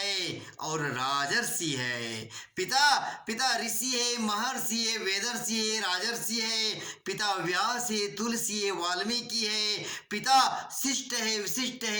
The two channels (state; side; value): identical; both; correlation 1.00